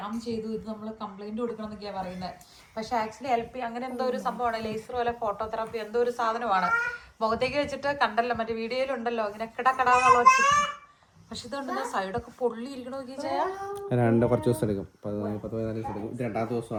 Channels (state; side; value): identical; both; correlation 1.00